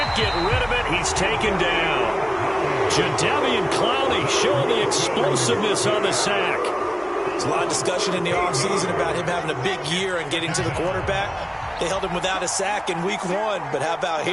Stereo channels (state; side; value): identical; both; correlation 1.00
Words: get rid of it. He's taken down. Jadeveon Clowney showing the explosiveness on the sack. There's a lot of discussion in the offseason about him having a big year and getting to the quarterback. They held him without a sack in week 1, but how about